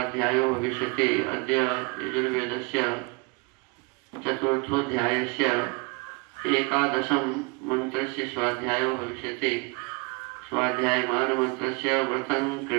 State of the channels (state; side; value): quieter; left; 30.5 dB